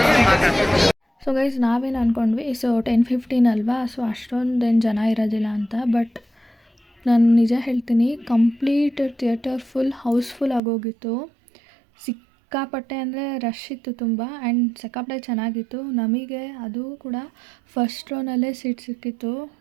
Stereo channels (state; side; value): drops out; left; at 10.6 s